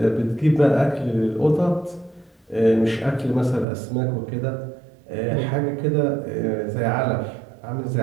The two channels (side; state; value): left; drops out; at 3.7 s